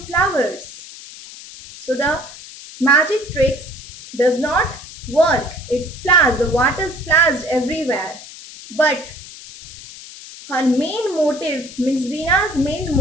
So the magic tricks does not work. It splashes, the water splashed everywhere. But her main motive, means Reena's main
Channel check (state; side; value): noise; left; hiss, 15 dB below the sound